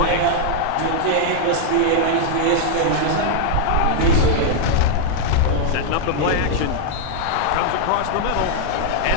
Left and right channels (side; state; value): both; different; correlation 0.00